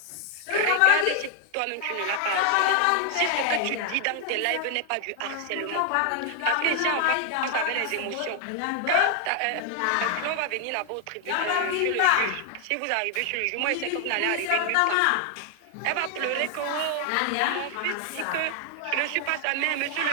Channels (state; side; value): different; both; correlation 0.00